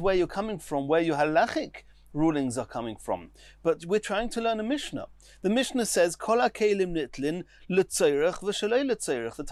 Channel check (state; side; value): identical; both; correlation 1.00